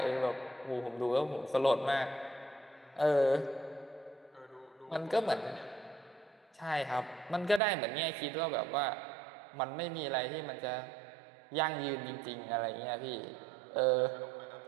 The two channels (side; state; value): left; drops out; at 7.6 s